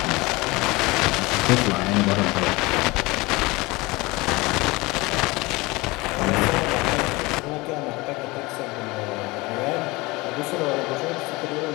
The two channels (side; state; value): right; quieter; 22.9 dB